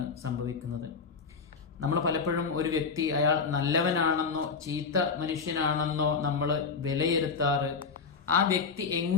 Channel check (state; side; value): quieter; right; 5.2 dB